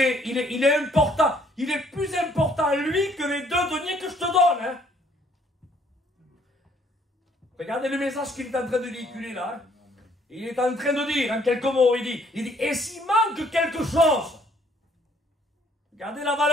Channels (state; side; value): normal; both; correlation 0.63